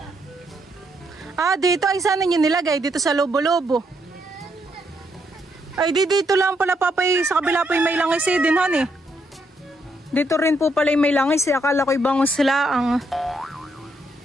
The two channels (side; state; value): both; normal; correlation 0.76